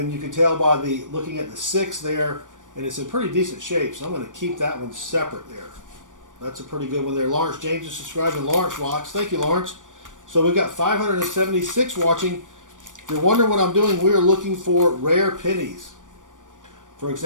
you can tell by the looking at the 6 there, and it's in pretty decent shape. So I'm going to keep that one separate there. That's a pretty good one there. Lawrence James is subscribed, and Lawrence rocks. Thank you, Lawrence. So we've got 576 watching. If you're wondering what I'm doing, we are looking for rare pennies. For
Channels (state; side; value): late; left; 0.87 ms